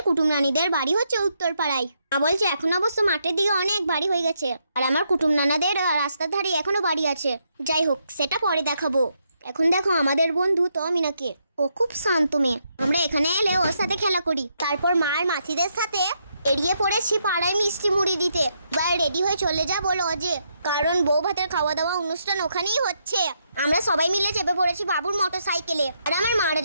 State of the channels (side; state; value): both; inverted; correlation -0.78